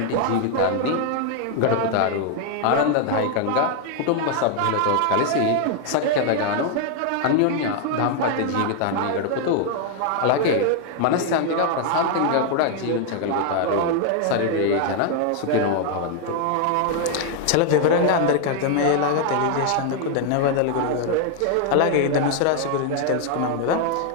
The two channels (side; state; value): both; different; correlation 0.00